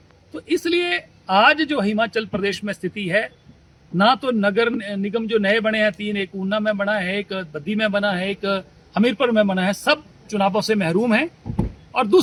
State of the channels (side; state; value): both; identical; correlation 1.00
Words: तो इसलिए आज जो हिमाचल प्रदेश में स्थिति है, ना तो नगर निगम जो नए बने हैं 3, एक ऊना में बना है, एक बद्दी में बना है, एक हमीरपुर में बना है, सब चुनावों से महरूम हैं। और